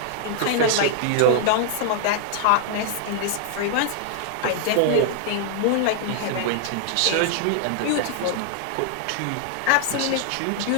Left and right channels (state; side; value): different; both; correlation -0.01